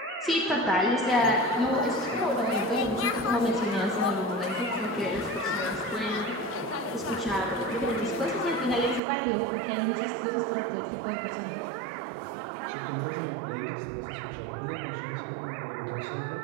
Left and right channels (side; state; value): left; drops out; at 9.0 s